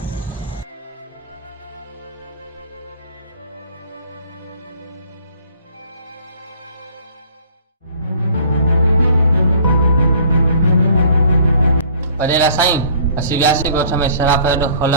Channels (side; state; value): both; inverted; correlation -0.53